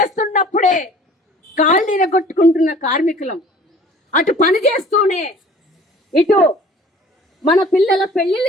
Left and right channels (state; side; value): normal; both; correlation 0.49